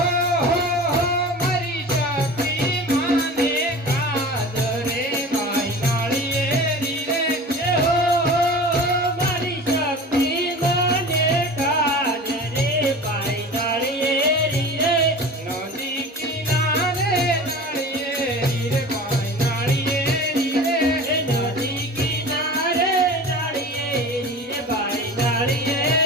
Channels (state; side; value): normal; both; correlation 0.36